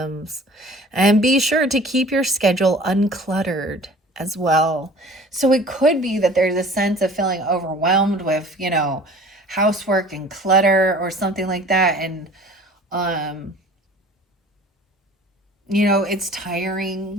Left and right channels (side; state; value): both; normal; correlation 0.47